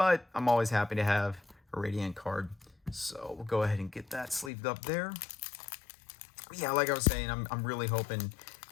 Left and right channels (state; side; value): drops out; right; at 4.5 s